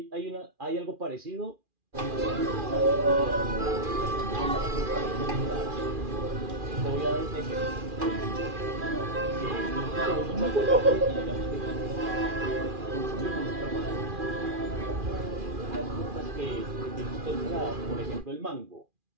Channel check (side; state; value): left; late; 2.4 ms